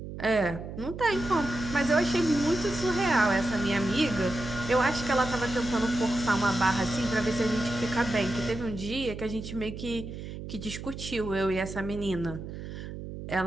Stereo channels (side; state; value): right; noise; hum, 9 dB below the sound